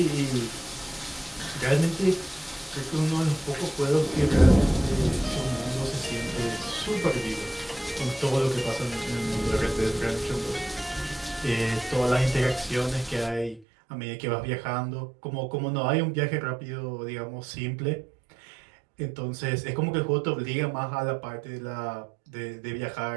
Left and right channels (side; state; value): left; drops out; at 13.7 s